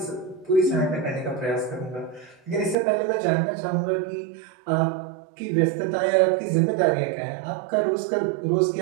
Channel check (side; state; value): left; drops out; at 2.8 s